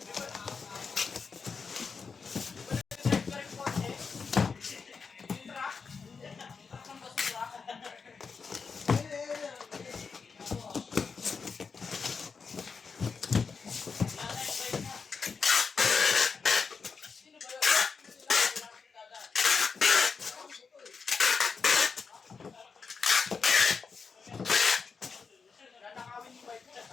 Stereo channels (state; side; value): quieter; right; 5.3 dB